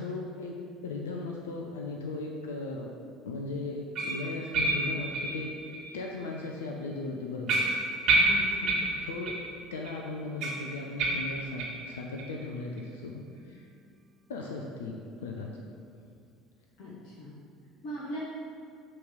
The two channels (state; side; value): normal; both; correlation 0.32